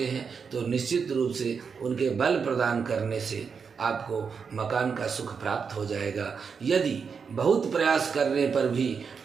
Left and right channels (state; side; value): quieter; left; 5.9 dB